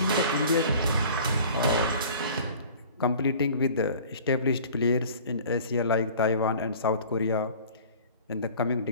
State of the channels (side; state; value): both; inverted; correlation -0.46